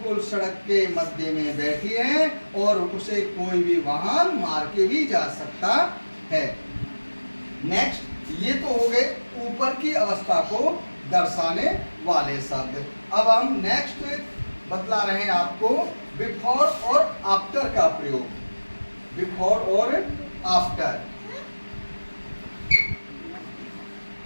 सड़क के मध्य में बैठी है और उसे कोई भी वाहन मार के भी जा सकता है। नेक्स्ट ये तो हो गए ऊपर की अवस्था को दर्शाने वाले शब्द। अब हम नेक्स्ट बतला रहे हैं आपको बिफोर और आफ्टर का प्रयोग। बिफोर और आफ्टर।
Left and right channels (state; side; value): inverted; both; correlation -1.00